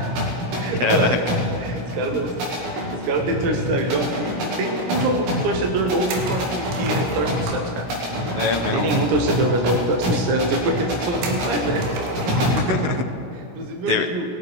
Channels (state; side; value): late; left; 17 ms